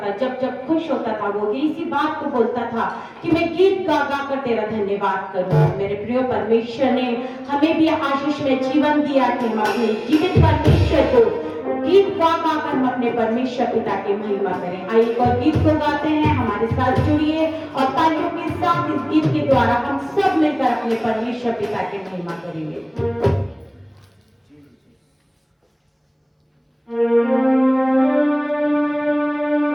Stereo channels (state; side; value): identical; both; correlation 1.00